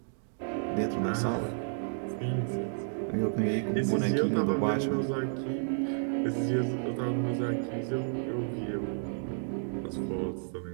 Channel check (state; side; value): silent; left; digital silence